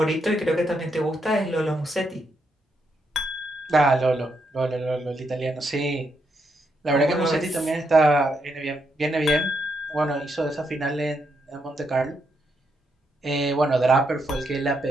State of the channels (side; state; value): both; normal; correlation 0.80